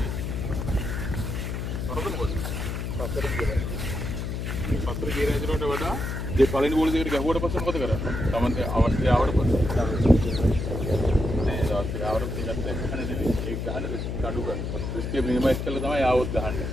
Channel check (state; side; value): noise; left; hum, 3 dB below the sound